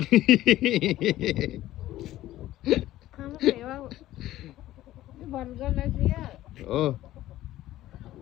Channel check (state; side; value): quieter; right; 14.8 dB